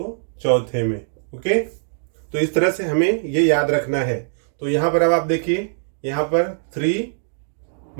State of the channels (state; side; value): silent; left; digital silence